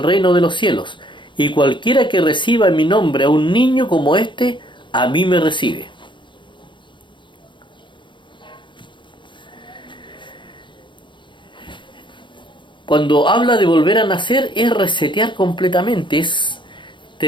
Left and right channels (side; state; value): right; late; 0.23 ms